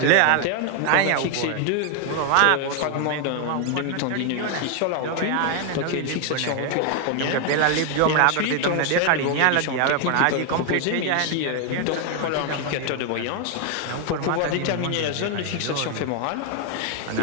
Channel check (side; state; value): both; different; correlation 0.00